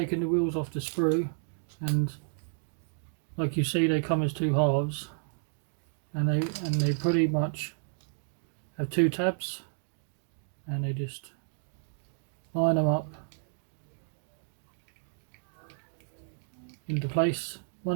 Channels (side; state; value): left; silent; digital silence